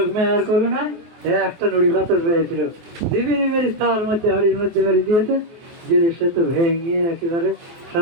মেয়ার করলো না, একটা নড়ি পাথর পেয়েছিল, দিবিনি মেরি তার মধ্যে হাড়ির মধ্যে মেরে দিয়েছে, দিলে সে তো ভেঙে একেবারে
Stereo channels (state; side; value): late; left; 23 ms